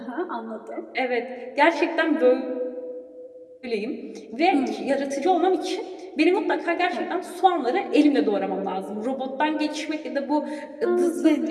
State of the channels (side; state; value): both; identical; correlation 1.00